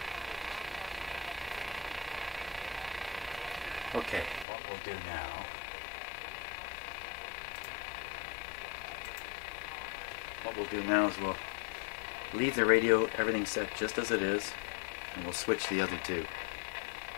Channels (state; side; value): drops out; right; at 4.5 s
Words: Okay, what we'll do now, is we'll leave the radio, everything set just as it is, and we'll switch the other two.